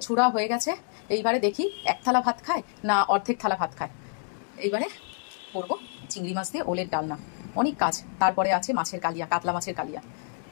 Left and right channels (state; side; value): silent; right; 60 dB below the other